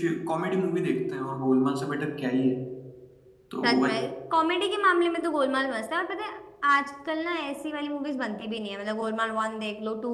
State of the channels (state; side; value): identical; both; correlation 1.00